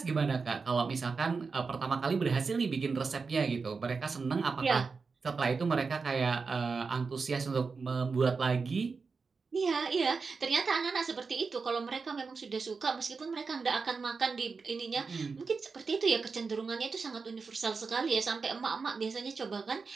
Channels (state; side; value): quieter; left; 4.8 dB